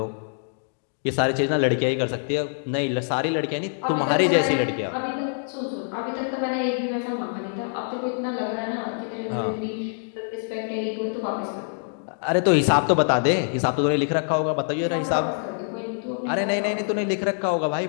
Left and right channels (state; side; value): silent; right; digital silence